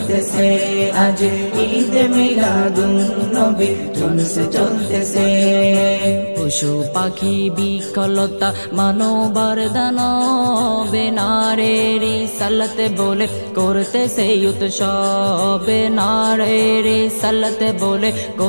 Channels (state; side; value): inverted; both; correlation -1.00